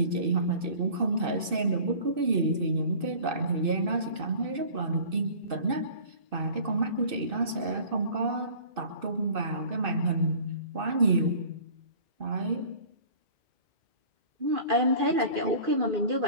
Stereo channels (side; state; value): left; late; 2.6 ms